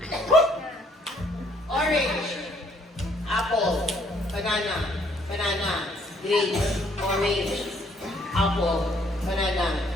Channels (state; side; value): normal; both; correlation 0.65